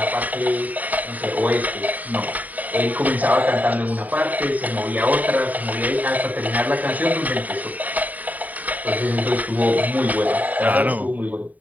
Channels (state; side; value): late; left; 0.076 ms